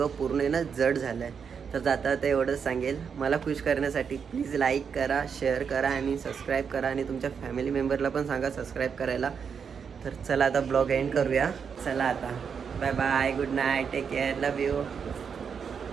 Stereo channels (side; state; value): left; quieter; 6.6 dB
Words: पूर्ण आहे ना जड झालं आहे. तर जाता आता एवढंच सांगेल, मला खुश करण्यासाठी प्लीज लाईक करा, शेअर करा आणि सबस्क्राईब करा. आणि तुमच्या फॅमिली मेंबरला पण सांगा सबस्क्राईब करायला. तर चला आता ब्लॉग एंड करूया. चला आता bye bye, good night, take care, love you.